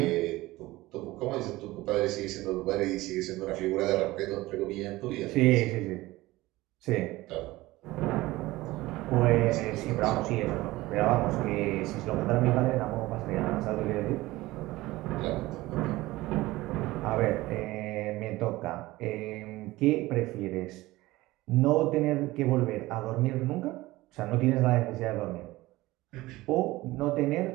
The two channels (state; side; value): quieter; left; 18.7 dB